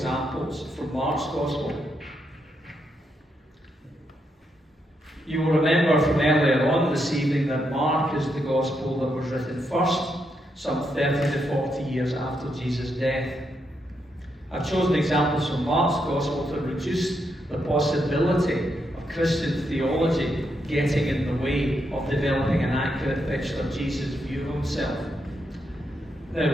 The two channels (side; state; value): both; normal; correlation 0.80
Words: from Mark's Gospel. You will remember from earlier on this evening that Mark is the Gospel that was written first, some 30 to 40 years after Jesus' death. I've chosen examples from Mark's Gospel to reduce the possibility of Christian theology getting in the way of developing an accurate picture of Jesus' view of himself.